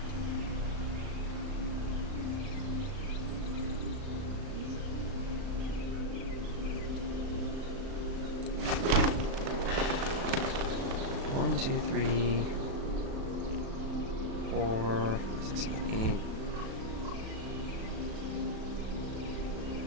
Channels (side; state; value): left; late; 36 ms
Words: One, two, three, 4, 5, 6, 7, 8.